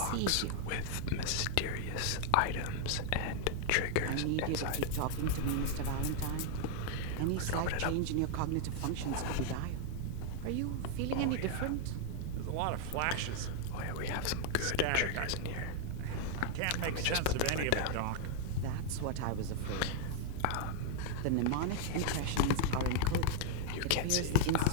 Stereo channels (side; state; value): both; different; correlation 0.00